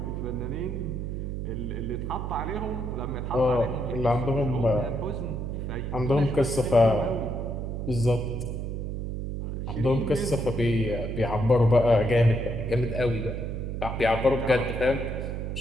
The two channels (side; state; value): right; noise; hum, 4 dB below the sound